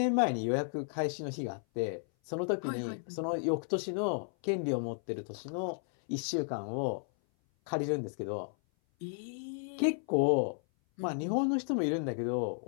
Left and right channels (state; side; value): silent; right; 55 dB below the other